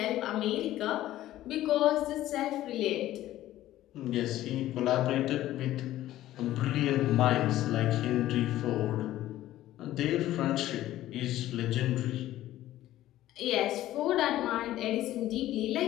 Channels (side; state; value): right; quieter; 14.3 dB